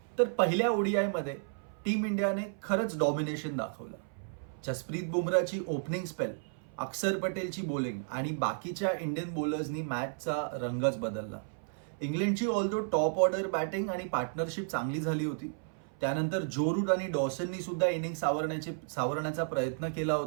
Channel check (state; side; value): silent; left; 56 dB below the other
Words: तर पहिल्या ओडीआय मध्ये टीम इंडियाने खरंच डॉमिनेशन दाखवलं. जसप्रीत बुमराची ओपनिंग स्पेल, अक्षर पटेलची बॉलिंग आणि बाकीच्या इंडियन बॉलर्सनी मॅचचा रंगच बदलला. इंग्लंडची ऑल्दो टॉप ऑर्डर बॅटिंग आणि पार्टनरशिप चांगली झाली होती. त्यानंतर जो रूट आणि डॉसननी सुद्धा इनिंग सावरण्याचा प्रयत्न केला